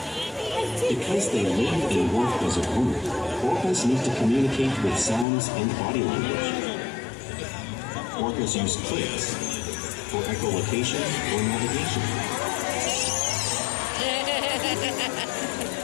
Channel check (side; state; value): right; drops out; at 5.2 s